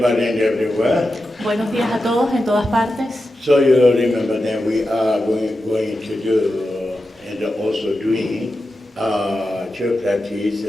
and everywhere. Buenos días a todos en todas partes. So you remember that we are going to do and also doing church practice.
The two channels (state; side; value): normal; both; correlation 0.91